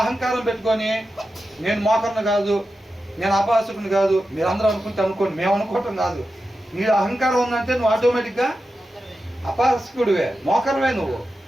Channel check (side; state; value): both; normal; correlation 0.91